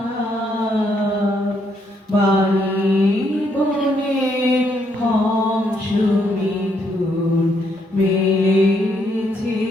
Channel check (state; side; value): normal; both; correlation 0.74